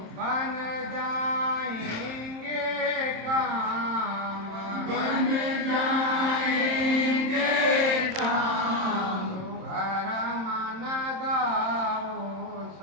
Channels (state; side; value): late; left; 27 ms